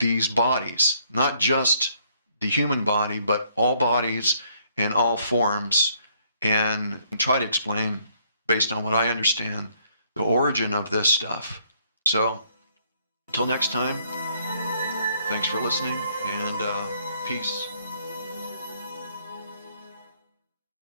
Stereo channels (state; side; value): inverted; both; correlation -0.67